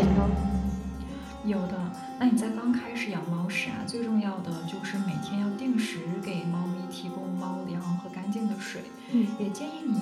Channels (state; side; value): identical; both; correlation 1.00